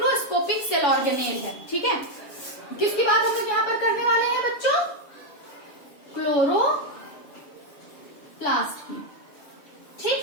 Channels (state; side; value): late; right; 7.2 ms